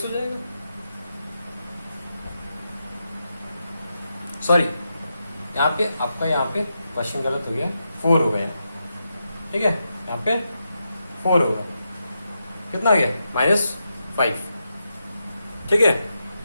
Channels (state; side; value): inverted; both; correlation -0.86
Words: हो जाएगा। सॉरी, यहाँ पे आपका यहाँ पे क्वेश्चन गलत हो गया, 4 हो गया। ठीक है, यहाँ पे 4 होगा, कितना आ गया -5। ठीक है,